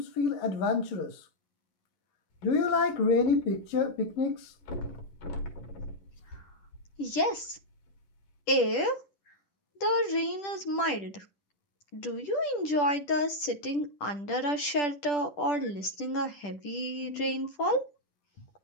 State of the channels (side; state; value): right; late; 10 ms